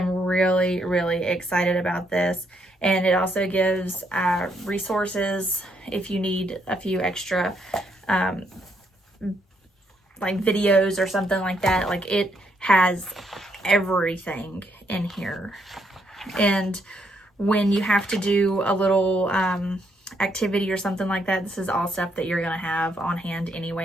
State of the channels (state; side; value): normal; both; correlation 0.75